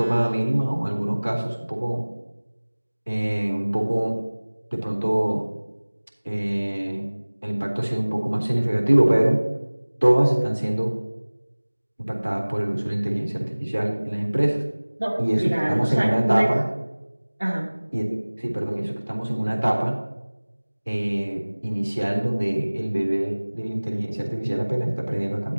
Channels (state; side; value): inverted; both; correlation -1.00